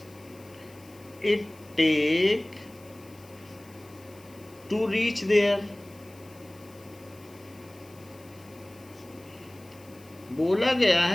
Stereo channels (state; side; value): noise; left; hiss, 25 dB below the sound